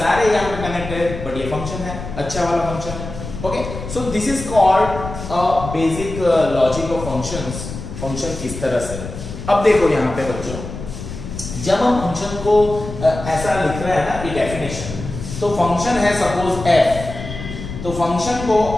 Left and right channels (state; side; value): noise; left; rumble, 9 dB below the sound